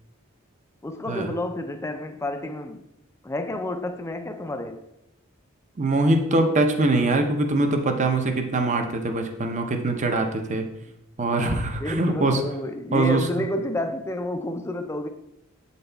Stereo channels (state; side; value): normal; both; correlation 0.52